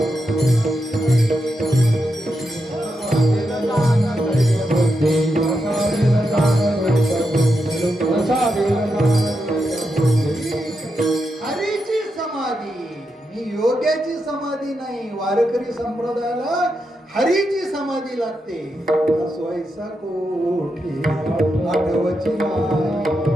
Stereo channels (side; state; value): both; normal; correlation 0.85